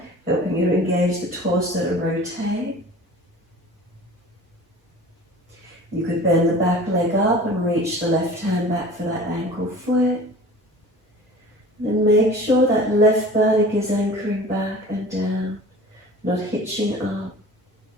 helping you engage the torso to rotate. You could bend the back leg up and reach the left hand back for that ankle foot. Then make sure that left buttock is anchoring back and down, not hitching up.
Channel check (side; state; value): both; normal; correlation 0.42